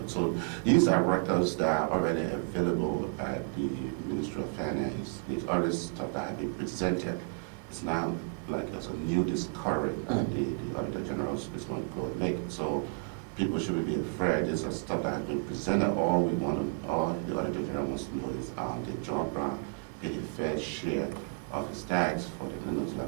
so these are records that are already available at the Ministry of Finance. These other stuff that have been presented. It's not like it's a new discovery that the Auditor General is going to go and make. So people shouldn't be afraid. This is stuff that has been presented. All the Auditor General wants to know is the John Brown get a fair share of his tax for the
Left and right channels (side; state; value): left; quieter; 38.5 dB